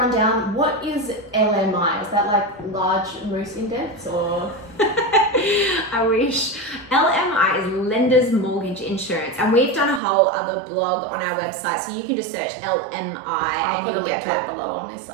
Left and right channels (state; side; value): drops out; left; at 10.0 s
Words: What is LMI? Is that like large moose index, or? I wish. LMI is Lender's Mortgage Insurance, and we've done a whole other blog on our website, so you can just search LMI and you'll get that below on this